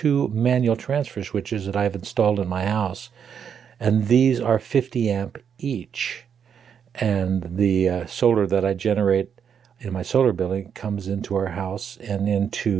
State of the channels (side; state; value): left; quieter; 7.7 dB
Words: manual transfer switches that I've installed in my house, and these are 50 amp each, and the solar that I generate in my solar building comes into our house and